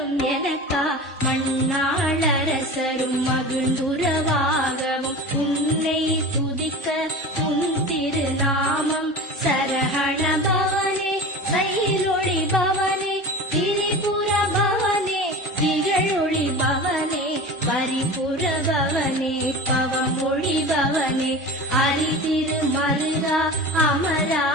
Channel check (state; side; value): normal; both; correlation 0.33